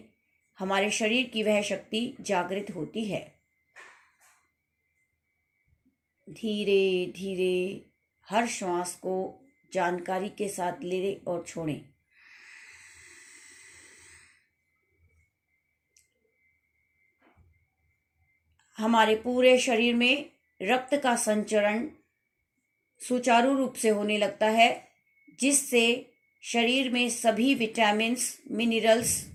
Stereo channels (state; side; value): identical; both; correlation 1.00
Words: हमारे शरीर की वह शक्ति जागृत होती है। धीरे धीरे हर श्वास को जानकारी के साथ लें और छोड़ें। हमारे पूरे शरीर में रक्त का संचरण सुचारू रूप से होने लगता है, जिससे शरीर में सभी विटामिन्स, मिनरल्स,